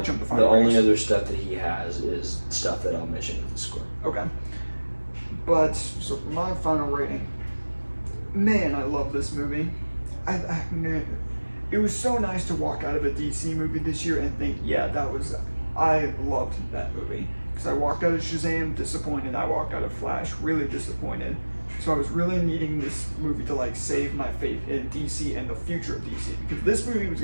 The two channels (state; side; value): inverted; both; correlation -1.00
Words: stuff that he has is stuff that I'll mention in the score. Okay. But so for my final rating, man, I love this movie. It was so nice to walk out of a DC movie this year and think, I loved that movie. Because I walked out of Shazam disappointed, I walked out of Flash really disappointed. So I was really needing this movie to like save my faith in DC and the future of DC. Because this movie was